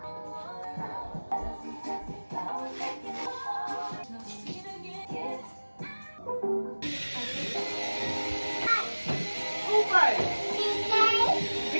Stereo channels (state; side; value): inverted; both; correlation -1.00